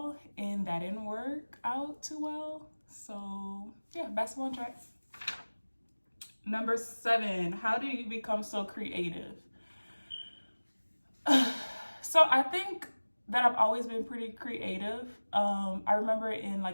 and that didn't work out too well. So yeah, basketball and track. Number 7, how do you become so creative? So I think that I've always been pretty creative. I remember in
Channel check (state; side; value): inverted; both; correlation -1.00